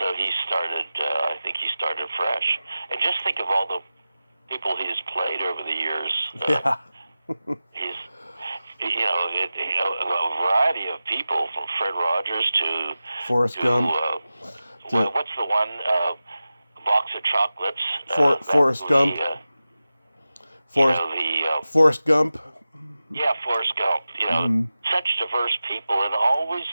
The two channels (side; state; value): both; inverted; correlation -0.95